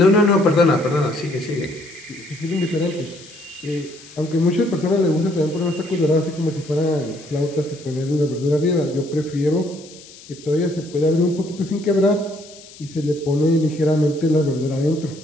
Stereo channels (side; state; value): left; noise; hiss, 20 dB below the sound